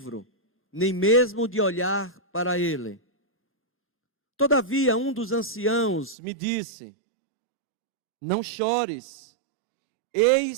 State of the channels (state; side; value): drops out; left; at 6.2 s